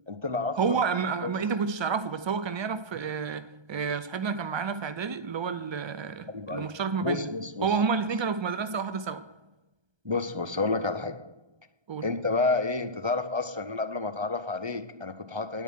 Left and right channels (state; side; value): late; left; 1.3 ms